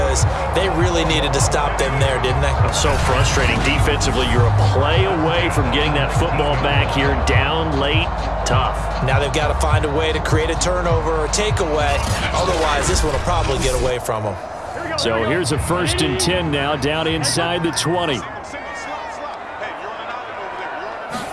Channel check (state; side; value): identical; both; correlation 1.00